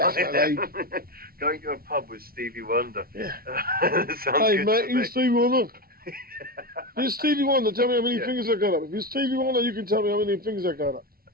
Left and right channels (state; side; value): late; left; 0.43 ms